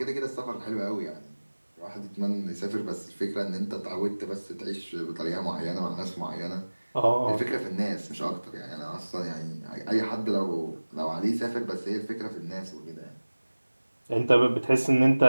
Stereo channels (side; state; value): both; inverted; correlation -1.00